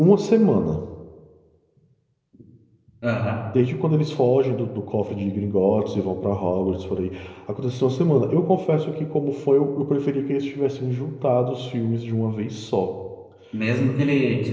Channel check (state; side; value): identical; both; correlation 1.00